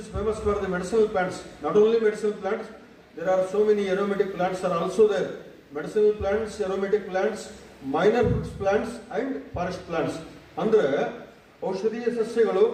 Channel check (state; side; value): identical; both; correlation 1.00